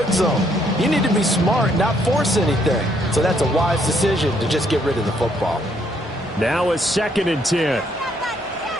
zone. You need to be smart, not force anything. So that's a wise decision to just get rid of the football. Now a 2nd and 10.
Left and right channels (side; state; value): both; normal; correlation 0.70